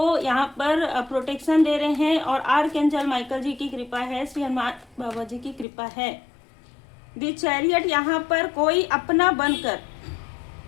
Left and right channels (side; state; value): right; drops out; at 5.7 s